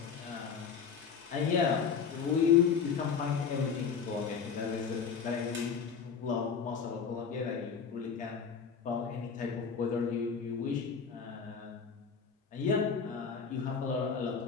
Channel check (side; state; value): right; quieter; 6.3 dB